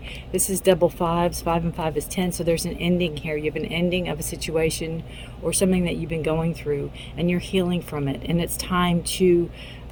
This is double fives. 5 and 5 is 10. So there's an ending here. You have an ending of a situation or something that you've been going through, and you're healing from it. And it's time to,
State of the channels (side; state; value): both; identical; correlation 1.00